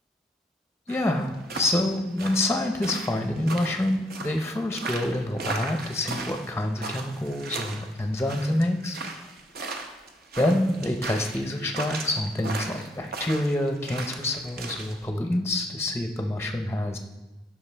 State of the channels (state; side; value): normal; both; correlation 0.72